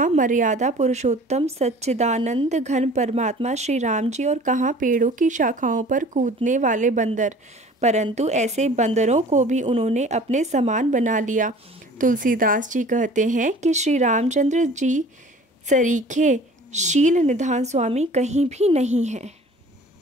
मर्यादा पुरुषोत्तम सच्चिदानंद घन परमात्मा श्री राम जी और कहाँ पेड़ों की शाखाओं पर कूदने वाले बंदर, परंतु ऐसे बंदरों को भी उन्होंने अपने समान बना लिया। तुलसीदास जी कहते हैं कि श्री रामचंद्र जी सरीखे शील निधान स्वामी कहीं भी नहीं है।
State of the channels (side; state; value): both; normal; correlation 0.46